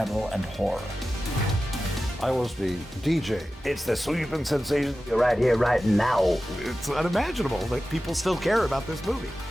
and horror. I was the DJ. It's the sweeping sensation. You're right here, right now. It's unimaginable that people still care about this movie.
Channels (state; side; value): normal; both; correlation 0.94